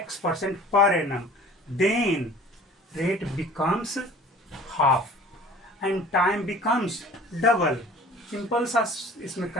per annum, then rate becomes half and time becomes double. Simple सा इसमें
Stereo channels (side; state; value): both; normal; correlation 0.47